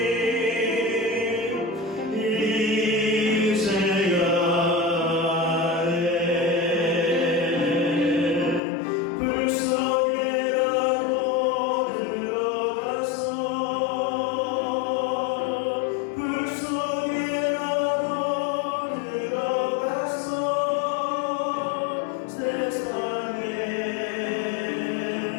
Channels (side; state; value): right; drops out; at 8.6 s